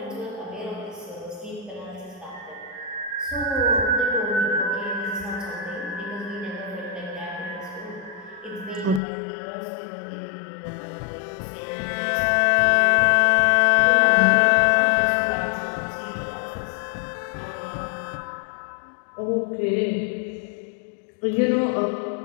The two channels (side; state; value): right; drops out; at 9.0 s